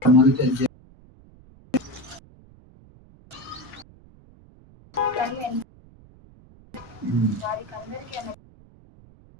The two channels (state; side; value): noise; right; rumble, 25 dB below the sound